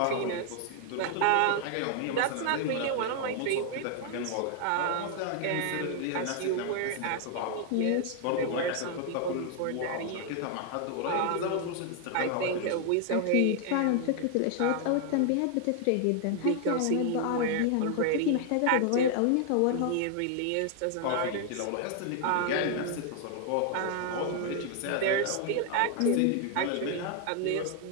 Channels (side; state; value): both; different; correlation 0.00